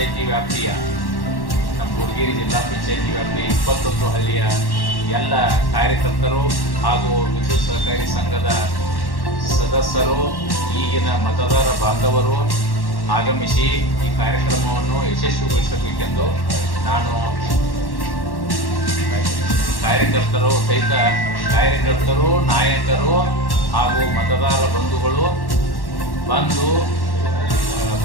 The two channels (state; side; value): late; right; 1.1 ms